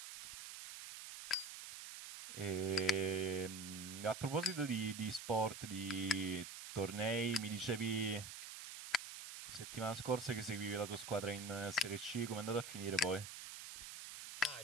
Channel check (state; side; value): noise; right; hiss, 10 dB below the sound